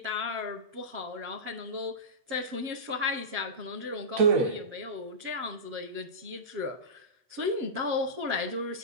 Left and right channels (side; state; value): left; late; 7.5 ms